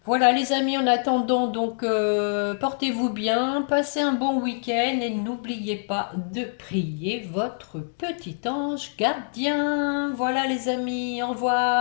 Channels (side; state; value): right; silent; digital silence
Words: Voilà les amis, en attendant, donc portez-vous bien, passez un bon week-end et n'oubliez pas de prier votre petit ange gardien. Voilà les amis, au